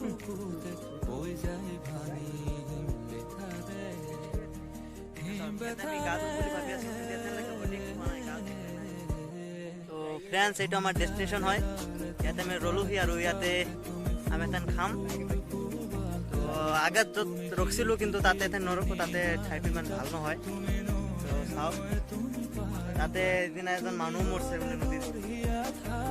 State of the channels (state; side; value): identical; both; correlation 1.00